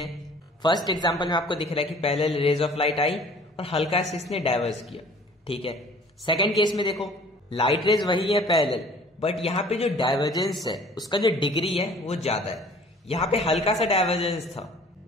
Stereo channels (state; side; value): normal; both; correlation 0.51